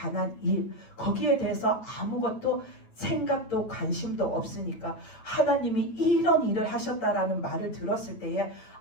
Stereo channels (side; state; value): right; late; 9.0 ms